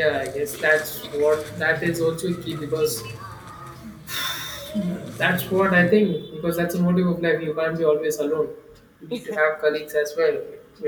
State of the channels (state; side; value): identical; both; correlation 1.00